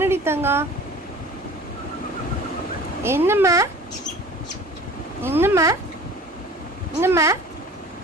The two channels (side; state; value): both; normal; correlation 0.43